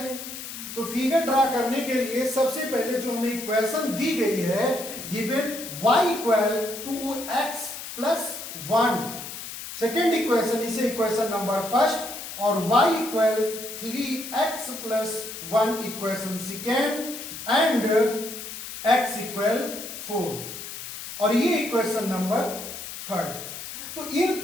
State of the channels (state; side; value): noise; left; hiss, 10 dB below the sound